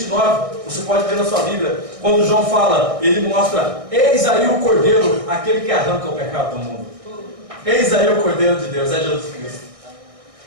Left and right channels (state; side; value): late; left; 1.6 ms